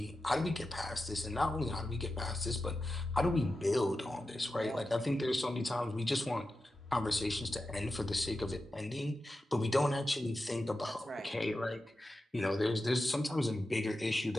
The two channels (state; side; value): normal; both; correlation 0.92